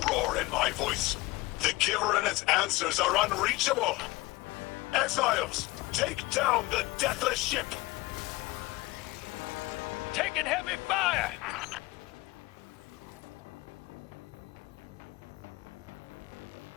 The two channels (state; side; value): quieter; right; 21.4 dB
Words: roar in my voice. The Giver and its answers are unreachable. Exiles, take down the deathless ship. Taking heavy fire!